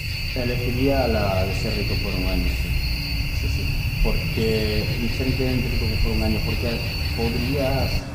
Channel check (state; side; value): identical; both; correlation 1.00